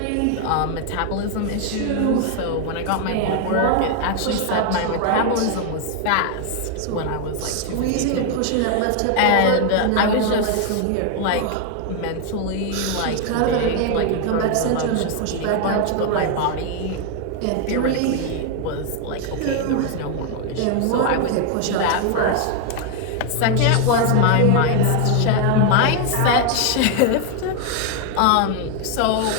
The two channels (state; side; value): different; both; correlation 0.00